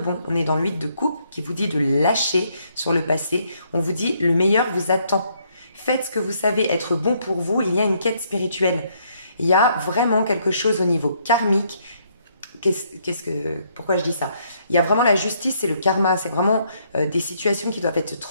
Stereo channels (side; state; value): both; inverted; correlation -0.71